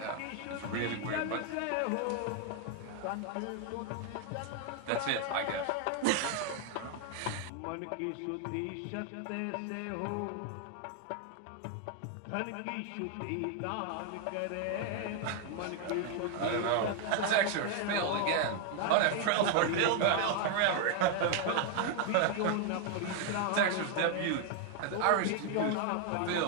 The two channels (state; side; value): different; both; correlation 0.00